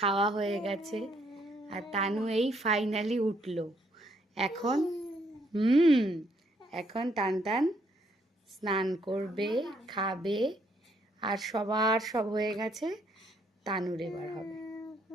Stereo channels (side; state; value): both; normal; correlation 0.70